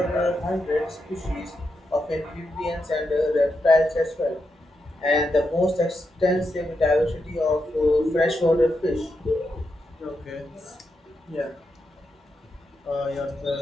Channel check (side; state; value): both; normal; correlation 0.85